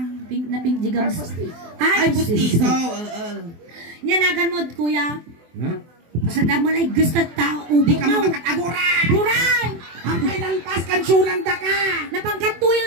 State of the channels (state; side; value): late; left; 24 ms